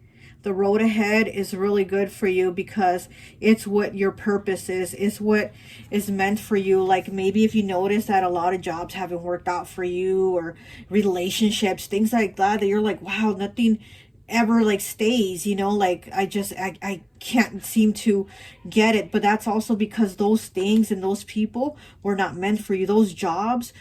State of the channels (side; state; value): both; identical; correlation 1.00